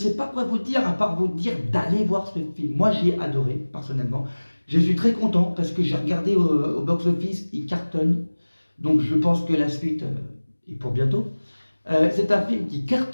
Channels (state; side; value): inverted; both; correlation -1.00